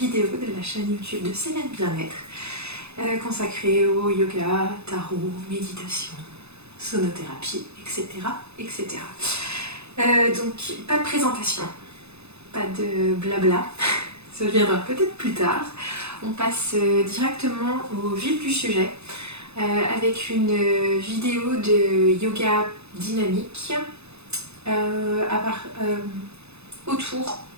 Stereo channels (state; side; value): late; left; 0.80 ms